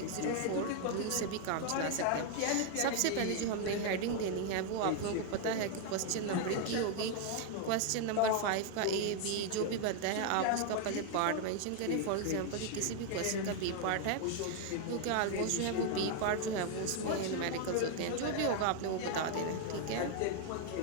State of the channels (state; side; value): different; both; correlation 0.00